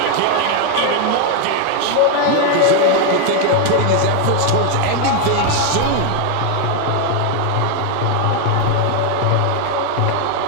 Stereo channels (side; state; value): both; different; correlation 0.01